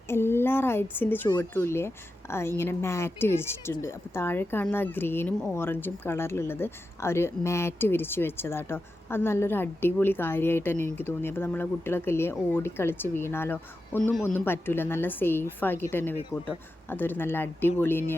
എല്ലാ റൈഡ്സിൻ്റെ ചുവട്ടിലുമില്ലേ ഇങ്ങനെ മാറ്റ് വിരിച്ചിട്ടുണ്ട്. അപ്പോൾ താഴെ കാണുന്ന ഗ്രീനും ഓറഞ്ചും കളറിലുള്ളത് അവർ മാറ്റ് വിരിച്ച് വെച്ചതാട്ടോ. അത് നല്ലൊരു അടിപൊളി കാര്യമായിട്ട് തന്നെ എനിക്ക് തോന്നി. അപ്പോൾ നമ്മളെ കുട്ടികളൊക്കെ ഇല്ലേ ഓടിക്കളിച്ച് വീണാലോ ഒന്നും പറ്റില്ല, നല്ല സേഫ് ആക്കിയിട്ട് തന്നെ വെക്കും കേട്ടോ. അതൊരു നല്ല അടിപൊളി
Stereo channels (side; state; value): both; normal; correlation 0.90